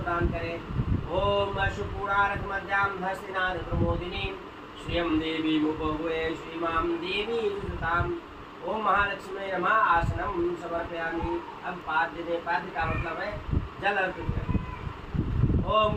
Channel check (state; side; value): identical; both; correlation 1.00